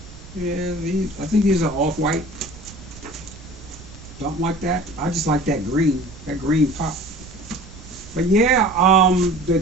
Yeah, I think these are off-white. Something like that. I just like that green pop. But yeah,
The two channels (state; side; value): noise; right; rumble, 18 dB below the sound